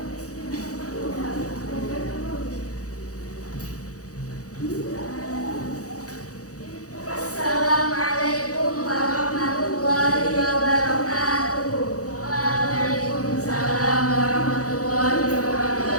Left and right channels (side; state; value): right; late; 0.66 ms